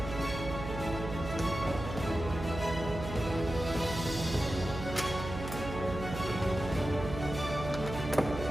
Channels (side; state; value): right; noise; hum, 7 dB below the sound